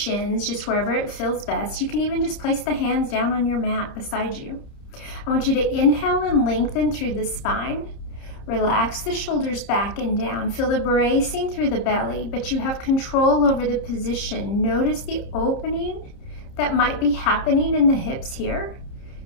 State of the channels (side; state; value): right; late; 30 ms